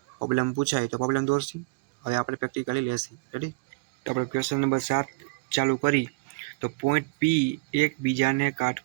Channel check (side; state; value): left; quieter; 27.9 dB